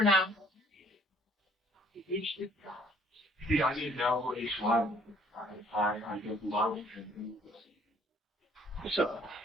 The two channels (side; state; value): both; normal; correlation 0.60